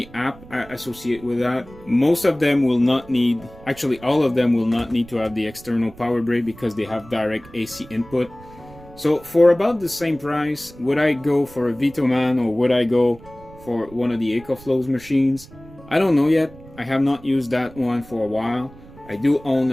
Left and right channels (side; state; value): right; noise; rumble, 21 dB below the sound